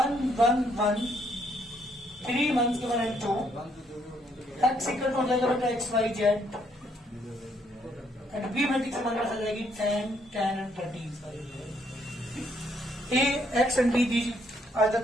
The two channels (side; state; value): both; normal; correlation 0.70